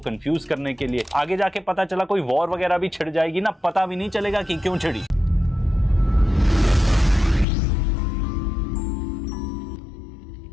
करने के लिए? आगे जाके पता चला कोई वॉर वगैरह भी छिड़ जाएगी ना, पता भी नहीं चलेगा कि क्यों छिड़ी।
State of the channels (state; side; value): drops out; right; at 7.5 s